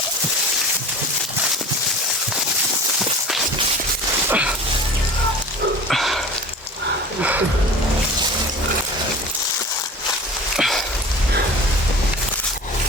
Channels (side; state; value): both; normal; correlation 0.39